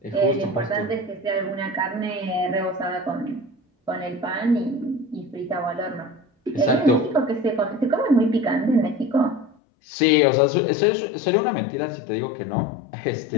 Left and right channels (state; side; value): drops out; right; at 9.6 s